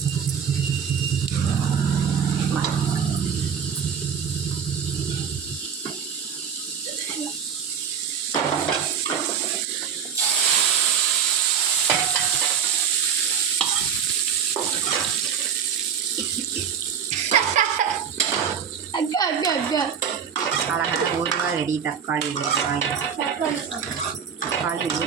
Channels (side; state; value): left; quieter; 7.5 dB